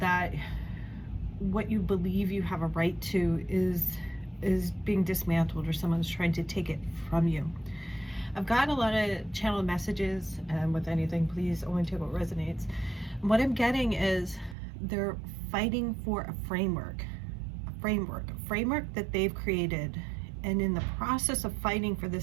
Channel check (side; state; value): left; drops out; at 14.6 s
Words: that what you believe you have a right to is being dismantled, or someone's trying to take it from you. I've gotten a lot of channeled messages, and with anything, please only take what resonates. What I'm getting is they're fighting for a framework that they've created. And in the process of fighting for